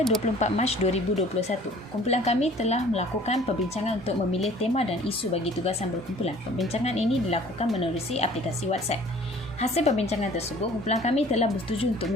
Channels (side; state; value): both; normal; correlation 0.51